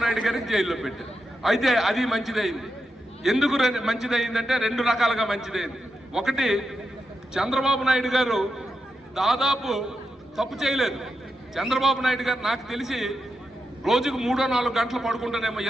నాయుడు గారికి జైల్లో పెట్టారు. అయితే అది మంచిదైంది. ఎందుకు మంచిదైందంటే 2 రకాలుగా మంచిదైంది. ఒకటి, చంద్రబాబు నాయుడు గారు దాదాపు తప్పు చేయలేదు. చంద్రబాబు నాయుడు గారు నాకు తెలిసి రోజుకు 3-4 గంటలు పడుకుంటానేమో,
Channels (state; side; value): normal; both; correlation 0.87